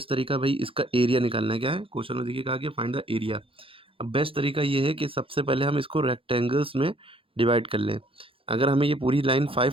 तरीका भाई इसका एरिया निकालना है। क्या है क्वेश्चन में देखिए कहा गया फाइंड द एरिया। अब बेस्ट तरीका ये है कि सबसे पहले हम इसको रेक्टेंगल्स में डिवाइड कर लें। अगर हमें ये पूरी लाइन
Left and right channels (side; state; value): left; late; 0.26 ms